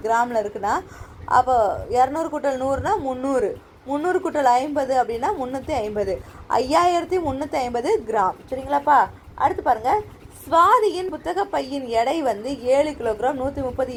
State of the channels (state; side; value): identical; both; correlation 1.00